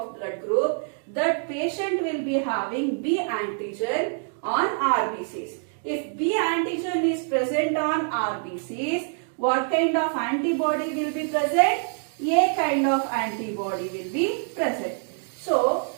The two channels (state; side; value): silent; left; 57 dB below the other